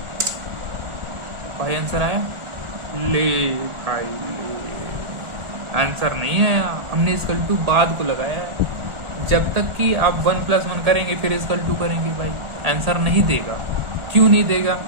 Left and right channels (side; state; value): left; late; 1.4 ms